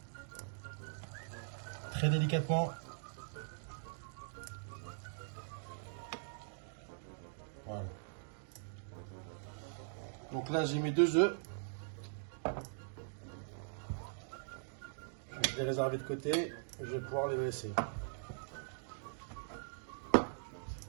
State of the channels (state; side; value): silent; left; digital silence